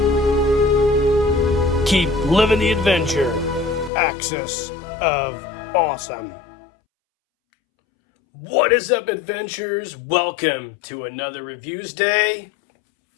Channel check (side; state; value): right; drops out; at 3.9 s